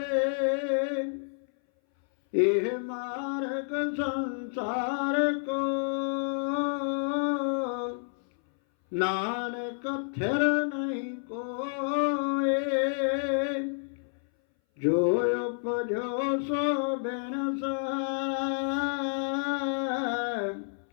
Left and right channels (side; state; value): right; silent; 58 dB below the other